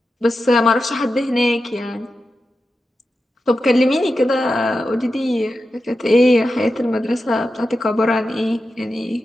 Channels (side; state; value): both; normal; correlation 0.91